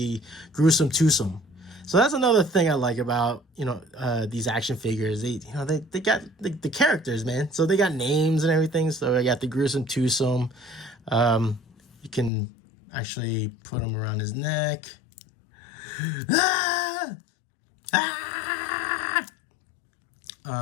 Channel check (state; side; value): drops out; right; at 12.3 s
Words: Gruesome Twosome. So that's another thing I like about, you know, these action figures. They got the characters, man. So they got names and everything. So I got the Gruesome Twosome. You can actually put them around his neck. Ah! Ah!